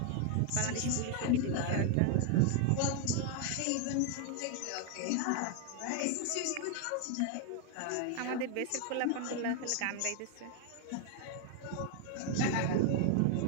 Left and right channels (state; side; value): different; both; correlation 0.00